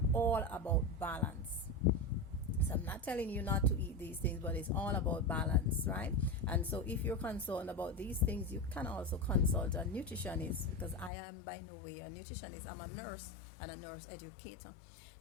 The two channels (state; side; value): drops out; right; at 11.1 s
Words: all about balance. So I'm not telling you not to eat these things, but it's all about balance, right? And so if you're concerned about these things, you can also consult a nutritionist, because I am by no way a nutritionist. I'm a nurse and a nurse educator.